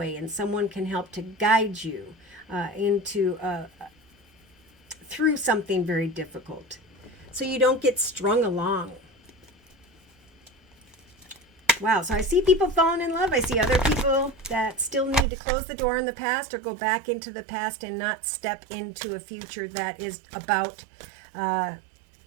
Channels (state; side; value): drops out; left; at 15.2 s